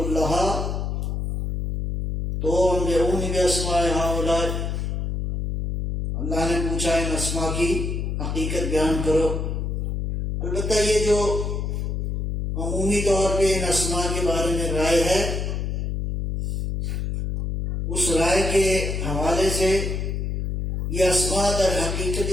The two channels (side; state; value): left; noise; hum, 2 dB below the sound